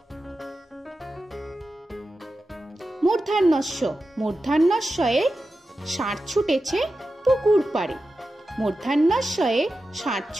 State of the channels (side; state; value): both; normal; correlation 0.92